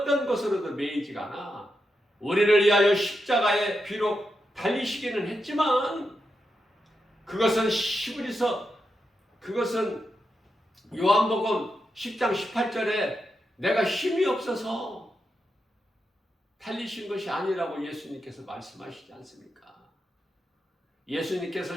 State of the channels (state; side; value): normal; both; correlation 0.86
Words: 것으로도 매이지가 않아. 우리를 위하여 십자가에 비록 달리시기는 했지만 그것은 그것은 요한복음 10장 18절에 내가 힘이 없어서 달리신 것이 아니라고 예수님께서 말씀하시지 않습니까? 예수님께서